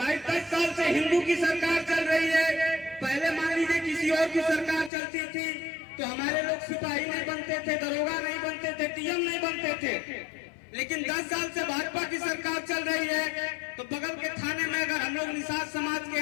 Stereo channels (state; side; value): drops out; right; at 4.9 s